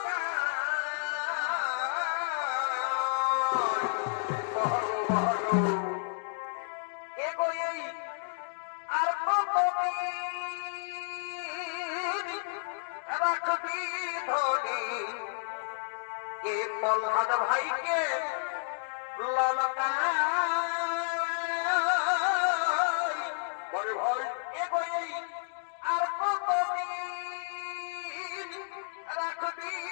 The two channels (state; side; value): silent; right; digital silence